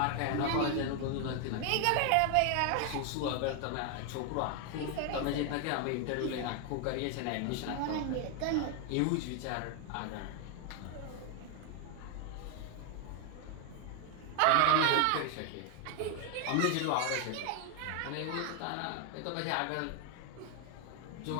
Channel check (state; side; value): different; both; correlation 0.01